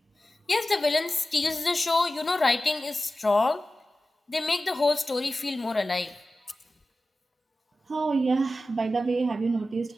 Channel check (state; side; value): normal; both; correlation 0.94